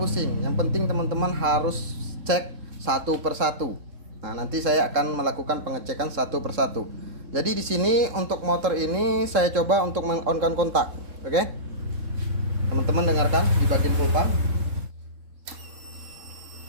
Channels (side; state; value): left; late; 3.7 ms